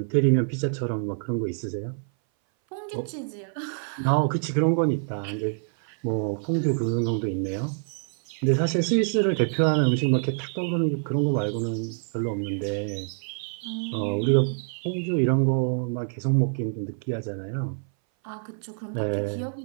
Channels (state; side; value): silent; left; 58 dB below the other